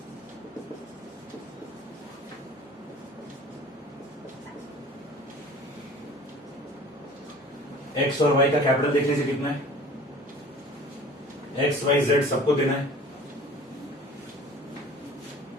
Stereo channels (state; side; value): normal; both; correlation 0.45